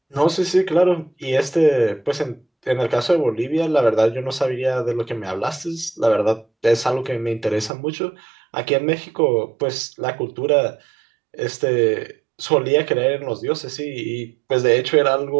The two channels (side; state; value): left; drops out; at 7.7 s